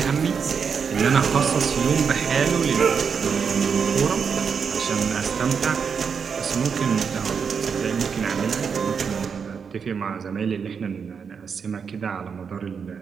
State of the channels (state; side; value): quieter; left; 6.3 dB